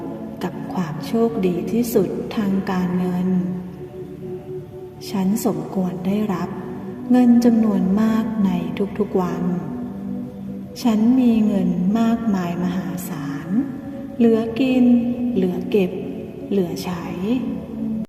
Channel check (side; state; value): both; identical; correlation 1.00